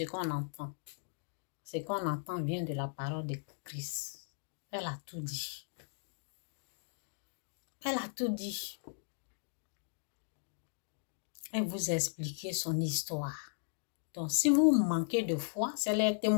qu'on entend. Ce qu'on entend vient de la parole de Christ. Elle a tout dit. Elle a tout dit. Elle vous a expliqué son histoire. Donc, si vous manquez de foi, c'est les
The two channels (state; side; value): silent; right; digital silence